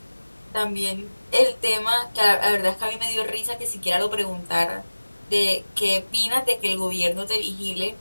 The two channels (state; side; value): inverted; both; correlation -1.00